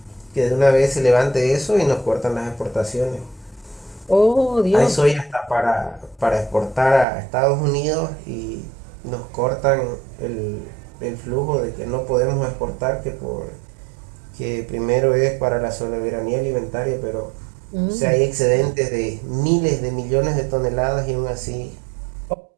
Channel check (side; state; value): left; drops out; at 7.1 s